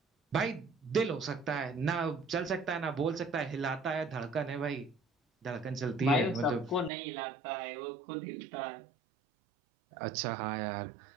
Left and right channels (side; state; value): left; drops out; at 6.9 s